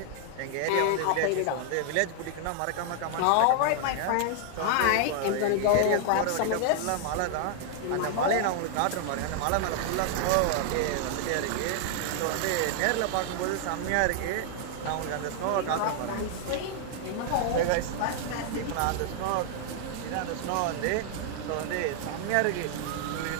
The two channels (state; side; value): different; both; correlation 0.00